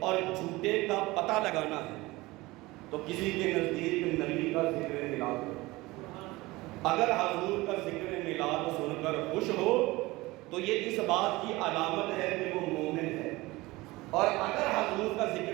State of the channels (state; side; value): quieter; left; 20.7 dB